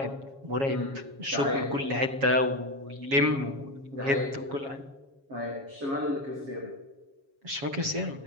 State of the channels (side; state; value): left; late; 7.3 ms